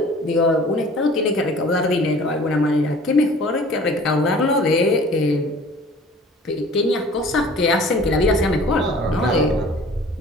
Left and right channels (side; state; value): both; normal; correlation 0.48